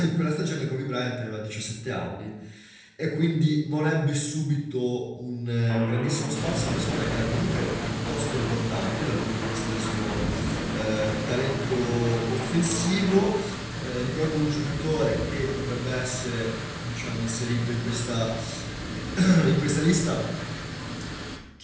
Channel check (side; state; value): both; identical; correlation 1.00